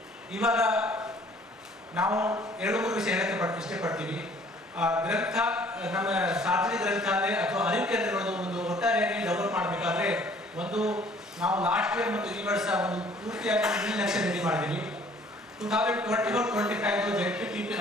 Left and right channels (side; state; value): both; normal; correlation 0.56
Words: ಇವಾಗ ನಾವು 2-3 ವಿಷಯ ಹೇಳಕ್ಕೆ ಇಷ್ಟಪಡ್ತೀವಿ. ಗ್ರಂಥ ನಮ್ಮ ಸಾರ್ವಜನಿಕ ಗ್ರಂಥಾಲಯ ಅಥವಾ ಅರಿವು ಕೇಂದ್ರಗಳು ಒಂದು ಒಟ್ಟಾರೆಯಾಗಿ ಡೆವಲಪ್ ಮಾಡಬೇಕಾದ್ರೆ ಒಂದು ನಾವು ಲಾಸ್ಟ್ ಇಯರ್ ಮತ್ತು ಈ ವರ್ಷ ಒಂದು ಪೂರ್ತಿಯಾಗಿ 1 ಲಕ್ಷ ರೆಡಿ ಮಾಡಿದ್ದೀವಿ. 2024-25 ಜೆಡ್ಪಿಟಿ